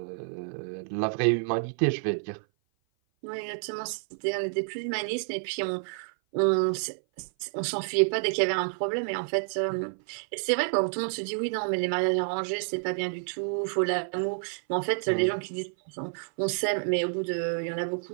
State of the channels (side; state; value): left; silent; 56 dB below the other